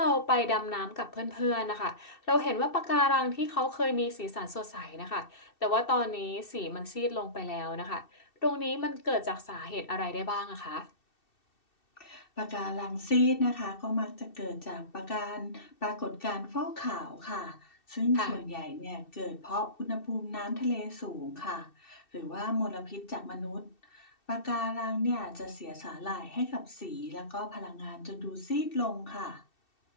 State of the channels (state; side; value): late; right; 2.7 ms